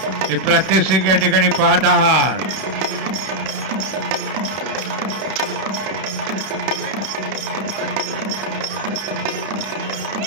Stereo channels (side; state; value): left; late; 32 ms